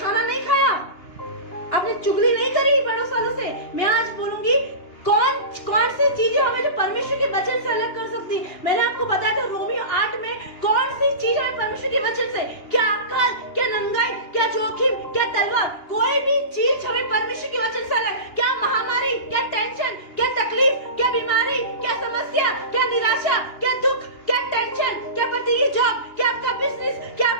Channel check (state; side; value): late; right; 2.9 ms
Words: नहीं खाया, आपने चुगली नहीं करी बड़ों सालों से? मैं आज बोलूंगी कौन सी चीजें हमें जो परमेश्वर के वचन से अलग कर सकती। मैंने आपको बताया था रोमियो 8 में कौन सी चीज हमें परमेश्वर के वचन से, क्या अक्ल, क्या नंगाई, क्या जोखिम, क्या तलवार, कोई भी चीज हमें परमेश्वर के वचन से अलग, क्या महामारी, क्या टेंशन, क्या तकलीफ, क्या बीमारी, क्या समस्या, क्या निराशा, क्या दुख, क्या टेंशन, क्या पति की जॉब, क्या आपका बिजनेस, क्या